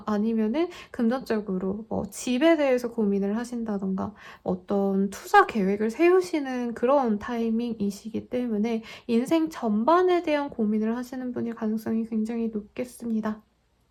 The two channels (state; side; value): identical; both; correlation 1.00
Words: 아니면은 금전적으로 뭐 집에 대해서 고민을 하신다던가 어떤 투자 계획을 세우시는 그런 타이밍이시기 때문에 인생 전반에 대한 고민을 하시는 분일 가능성이 굉장히 높겠습니다.